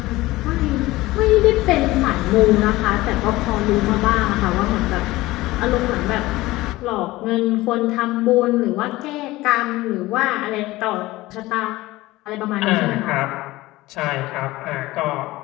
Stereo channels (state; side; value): quieter; right; 18.6 dB